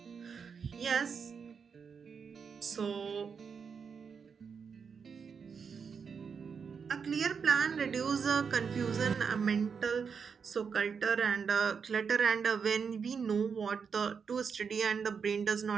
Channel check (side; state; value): left; quieter; 6.1 dB